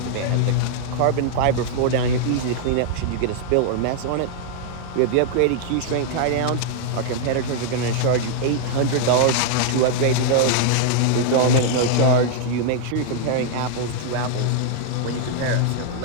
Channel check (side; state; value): both; different; correlation -0.01